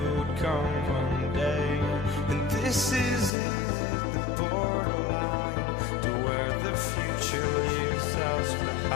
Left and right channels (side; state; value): right; drops out; at 3.3 s